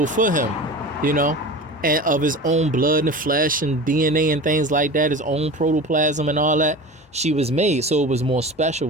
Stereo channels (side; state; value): both; normal; correlation 0.33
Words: for him, and of his own blood and flesh and DNA and things like that, his own protoplasm and all that. She was made, so it was more